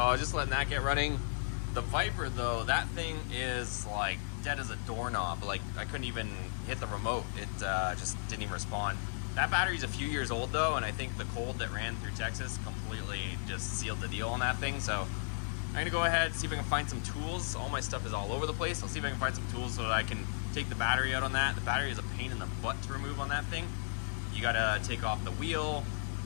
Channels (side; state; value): right; silent; digital silence